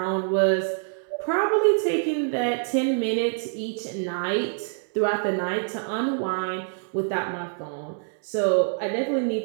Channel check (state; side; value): silent; left; 61 dB below the other